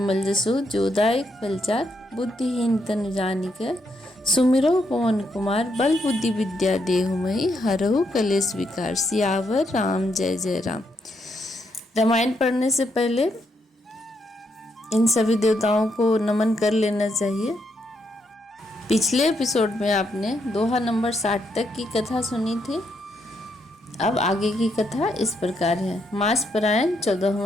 जसो जोदायक फलचार। बुद्धिहीन तनु जानिक सुमिरो पवन कुमार। बल बुद्धि विद्या देहुमहि हरहु कलेश विकार। सियावर राम जय जय राम। रामायण पढ़ने से पहले इन सभी देवताओं को नमन कर लेना चाहिए। पिछले एपिसोड में आपने दोहा नंबर 60 तक की कथा सुनी थी। अब आगे की कथा इस प्रकार है। मास परायण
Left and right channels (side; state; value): both; normal; correlation 0.78